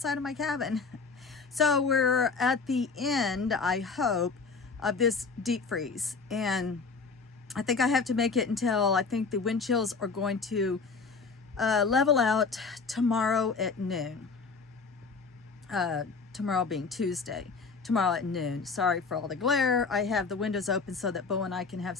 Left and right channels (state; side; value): quieter; right; 4.7 dB